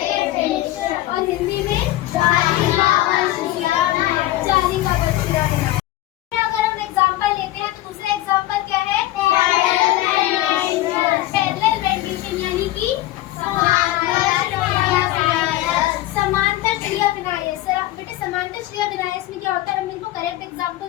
और हिंदी में जाली का बछिया बनाया। अगर हम एग्जाम्पल लेते हैं तो दूसरा एग्जाम्पल क्या है? पैरेलल रेंडिशन, यानी कि समांतर श्रेय विन्यास। बेटे समांतर श्रेय विन्यास में क्या होता है? मेरे को करेक्ट एग्जाम्पल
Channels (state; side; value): quieter; right; 15.8 dB